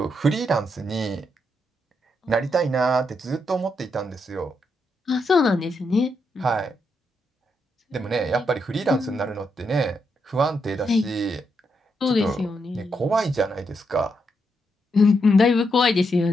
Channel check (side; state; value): both; normal; correlation 0.81